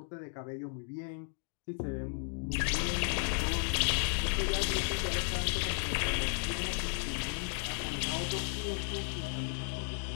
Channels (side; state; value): right; silent; digital silence